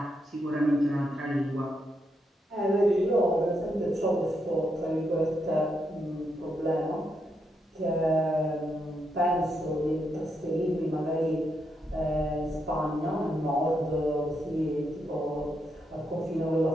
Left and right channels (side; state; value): both; normal; correlation 0.81